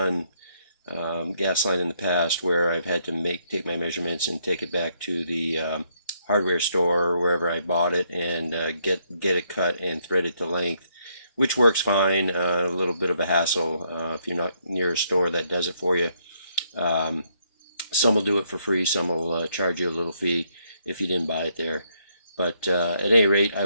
gas line in the past where I've had to take my measurements and take it back to the hardware store or wherever I bought it and get it cut and threaded to length, which works fine. A little bit of a hassle if you're not near a store that does it for you. Some will do it for free, some will charge you a little fee if you didn't buy it there. But at any rate, I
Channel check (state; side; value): inverted; both; correlation -0.73